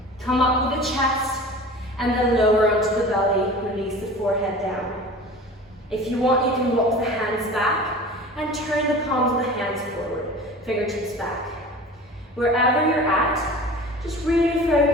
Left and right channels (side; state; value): both; normal; correlation 0.38